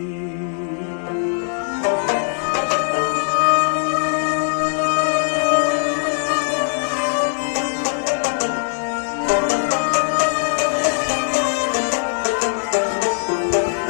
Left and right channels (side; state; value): right; silent; digital silence